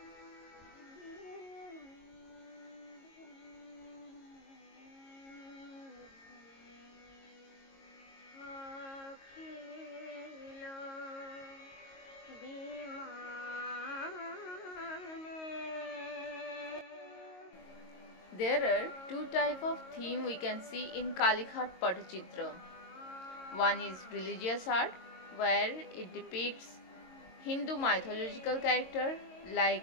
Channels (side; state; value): right; late; 22 ms